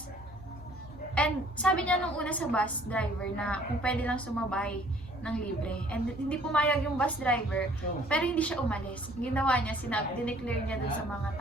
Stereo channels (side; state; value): left; noise; hum, 20 dB below the sound